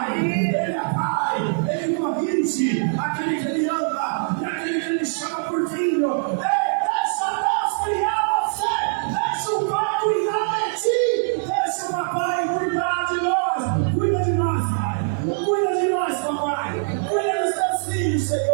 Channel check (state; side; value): silent; left; digital silence